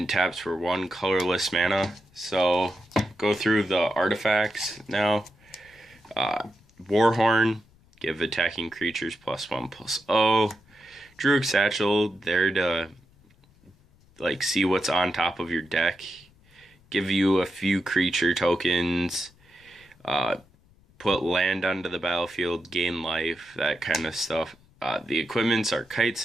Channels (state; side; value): noise; left; rumble, 30 dB below the sound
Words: taps for 1 colorless mana. So go through the artifacts now. Warhorn, give attacking creatures +1/+0. Druid Satchel, there to see what's on top of your deck, give you a few creature tokens, put land onto the battlefield, gain life, that kind of stuff. The equipments are Kite